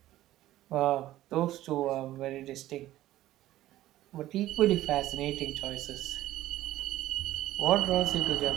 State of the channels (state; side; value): quieter; left; 14.8 dB